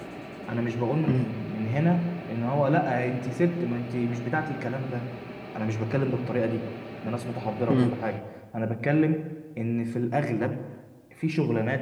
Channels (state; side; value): identical; both; correlation 1.00